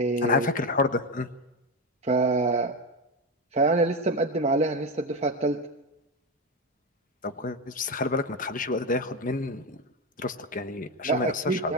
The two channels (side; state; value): both; normal; correlation 0.14